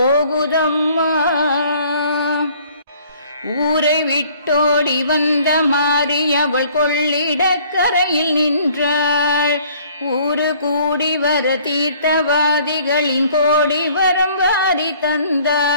ஊரை விட்டோடி வந்த மாறி அவள் கொள்ளிடக்கரையில் நின்றாள். ஊரு கூடி வர தீர்த்தவாதிகளின் கோடி வரம் வாரி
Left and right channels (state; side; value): inverted; both; correlation -0.56